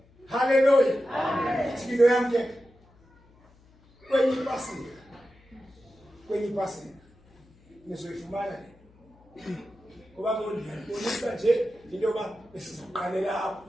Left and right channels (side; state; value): left; noise; hum, 29 dB below the sound